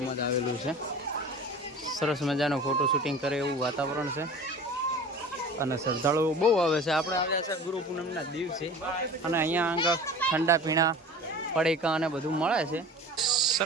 જ આવેલું છે. સરસ મજાનો ફોટો શૂટિંગ કરે એવું વાતાવરણ છે અને શ્રદ્ધાળુઓ બહુ આવે છે. આપણે આવ્યા છે ગુરુ પૂનમના દિવસે અને અહીંયા આગળ ઠંડા પીણા પડીકા અને બધું મળે છે.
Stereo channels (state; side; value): normal; both; correlation 0.40